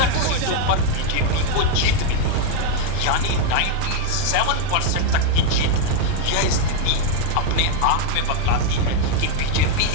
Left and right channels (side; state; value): both; different; correlation 0.00